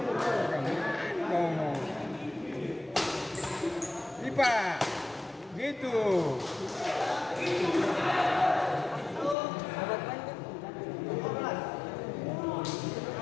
Ngomong. Ipa, gitu.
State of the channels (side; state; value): right; drops out; at 9.3 s